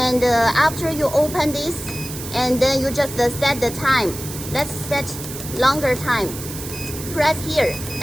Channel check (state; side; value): noise; right; hiss, 10 dB below the sound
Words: after you open this, and then you just set the time. Let's set longer time. Press here